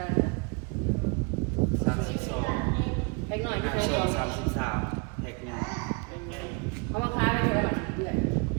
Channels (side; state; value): left; quieter; 31.1 dB